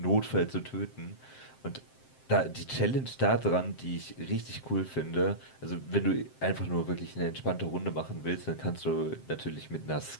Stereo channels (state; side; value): late; right; 7.7 ms